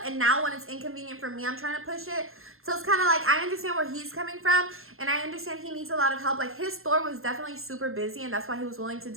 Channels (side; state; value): left; late; 0.61 ms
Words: And now when it's inconvenient for me, I'm trying to push it. So it's kind of like, I understand where he's coming from. And I understand he needs a lot of help. Like, his store was definitely super busy. And that's why he was willing to